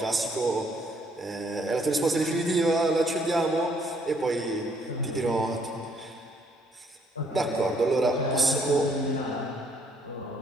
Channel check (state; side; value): normal; both; correlation 0.67